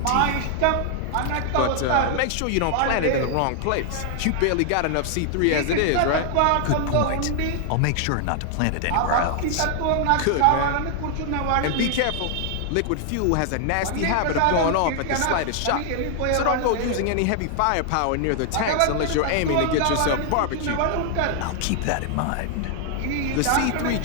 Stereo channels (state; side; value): different; both; correlation 0.00